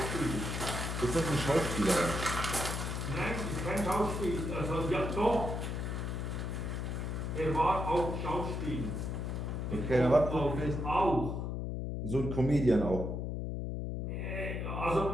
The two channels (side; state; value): left; noise; hum, 3 dB below the sound